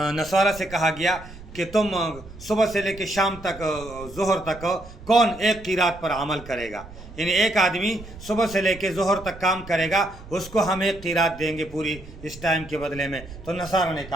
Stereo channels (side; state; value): right; noise; rumble, 17 dB below the sound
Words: نصارہ سے کہا گیا کہ تم صبح سے لے کے شام تک ظہر تک کون ایک قیرات پر عمل کرے گا، یعنی ایک آدمی صبح سے لے کے ظہر تک کام کرے گا، اس کو ہم ایک قیرات دیں گے پوری اس ٹائم کے بدلے میں۔ تو نصارہ نے